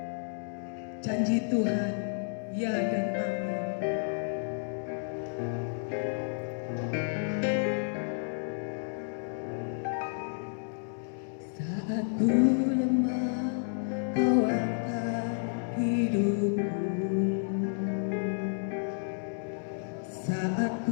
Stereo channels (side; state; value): right; silent; digital silence